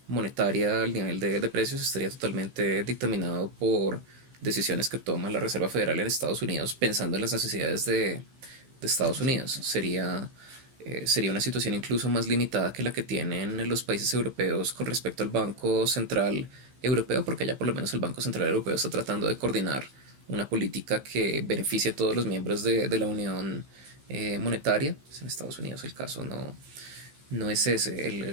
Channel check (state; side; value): late; left; 15 ms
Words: monetaria, el nivel de precios estaría totalmente dictaminado por decisiones que toma la Reserva Federal en Estados Unidos pensando en las necesidades de Estados Unidos. Sería una situación incluso más limitada que la que tienen los países europeos con respecto al Banco Central Europeo, porque ya por lo menos el Banco Central Europeo está tratando de coordinar una política que beneficie a todos los miembros de la Unión Monetaria. Pues en Estados Unidos el caso no es ese.